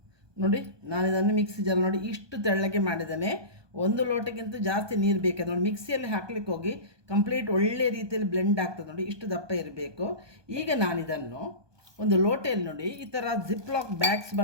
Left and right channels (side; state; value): left; late; 1.2 ms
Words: ನೋಡಿ ನಾನು ಇದನ್ನು ಮಿಕ್ಸಿ ಜಾರ್ ನೋಡಿ ಇಷ್ಟು ತೆಳ್ಳಗೆ ಮಾಡಿದ್ದೇನೆ. 1 ಲೋಟಕ್ಕಿಂತ ಜಾಸ್ತಿ ನೀರು ಬೇಕಾದ್ರೆ ನೋಡಿ ಮಿಕ್ಸಿಯಲ್ಲಿ ಹಾಕ್ಲಿಕ್ಕೆ ಹೋಗಿ ಕಂಪ್ಲೀಟ್ ಒಳ್ಳೆ ರೀತಿಯಲ್ಲಿ ಬ್ಲೆಂಡ್ ಆಗ್ತದೆ. ನೋಡಿ ಇಷ್ಟು ದಪ್ಪ ಇರಬೇಕು. ಈಗ ನಾನಿದನ್ನು ಒಂದು ಲೋಟೆಯಲ್ಲಿ ನೋಡಿ ಈ ಥರ ಜಿಪ್ಲಾಕ್ ಬ್ಯಾಗ್ಸ್